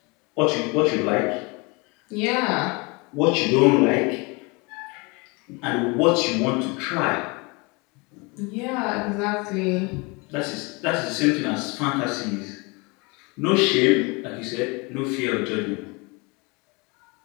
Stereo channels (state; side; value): quieter; right; 28.3 dB